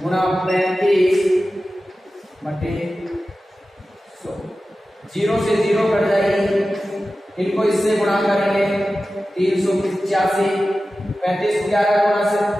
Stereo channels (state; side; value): normal; both; correlation 0.94